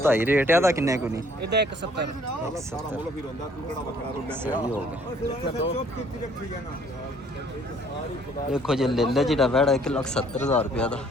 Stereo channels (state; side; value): normal; both; correlation 0.60